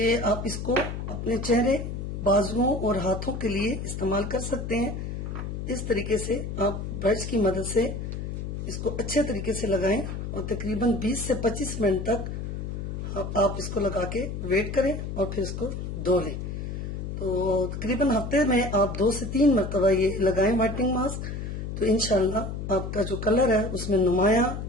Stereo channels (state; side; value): noise; left; hum, 5 dB below the sound